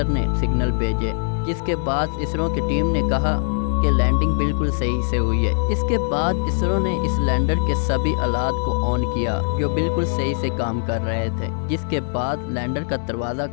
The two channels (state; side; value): silent; right; digital silence